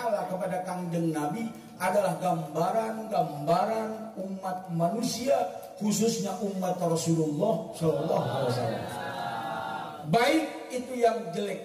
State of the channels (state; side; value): identical; both; correlation 1.00